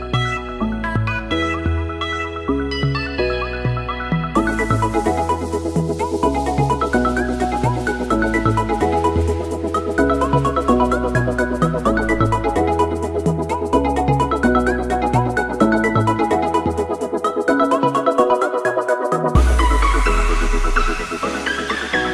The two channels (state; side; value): identical; both; correlation 1.00